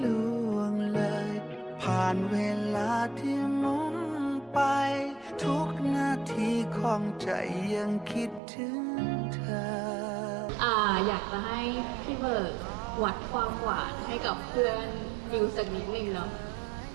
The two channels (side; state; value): left; drops out; at 8.4 s